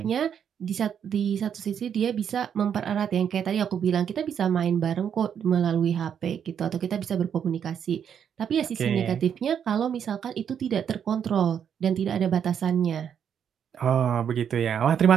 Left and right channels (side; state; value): left; quieter; 8.2 dB